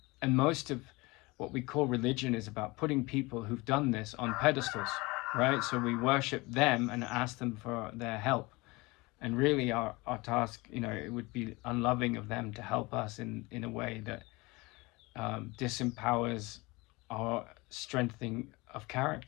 most of what we call religion is about putting people who've done this on pedestals, right? So we worship them and ask them for their help. And really our task, it would be unloving of them to help us in a way that disempowers our strengthening of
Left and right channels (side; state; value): right; quieter; 23.7 dB